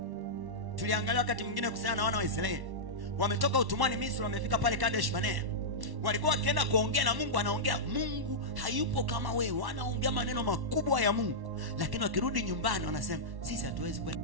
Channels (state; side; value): late; left; 1.1 ms